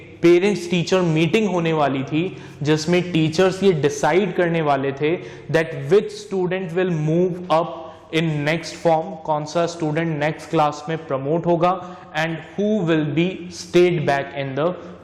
पेरेंट्स टीचर मीटिंग होने वाली थी जिसमें टीचर्स ये डिसाइड करने वाले थे that which student will move up in next form, कौन सा स्टूडेंट नेक्स्ट क्लास में प्रमोट होगा, and who will be stayed back in the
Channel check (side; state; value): both; identical; correlation 1.00